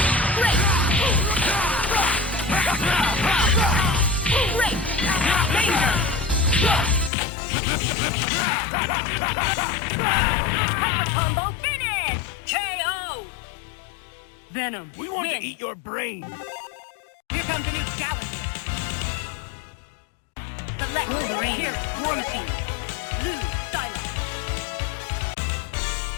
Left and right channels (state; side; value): drops out; right; at 7.1 s